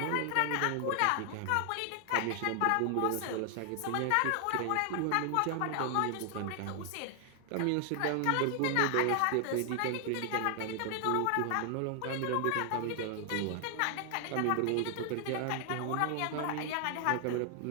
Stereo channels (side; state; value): both; different; correlation 0.00